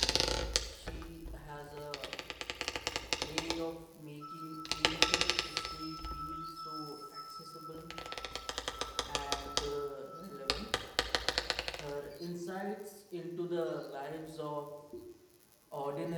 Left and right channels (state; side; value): identical; both; correlation 1.00